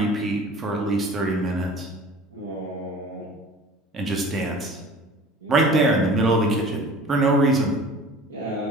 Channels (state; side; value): normal; both; correlation 0.44